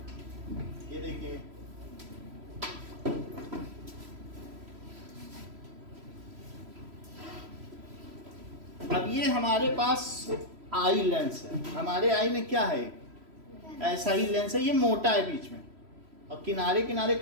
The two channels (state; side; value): late; left; 3.0 ms